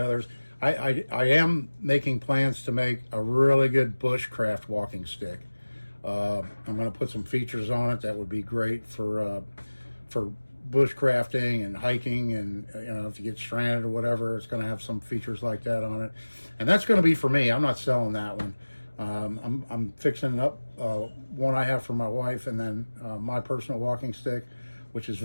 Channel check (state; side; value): inverted; both; correlation -1.00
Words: I am making plans to make a really good bushcraft walking stick. I'm going to put some features on it that would be great for bushcrafting and hiking, and you know, if you get stranded or whatever, it's going to have some features like that on it. And that's going to be for me. I'm not selling that one. I'm fixing up one I have for my wife, and then my personal walking stick, which is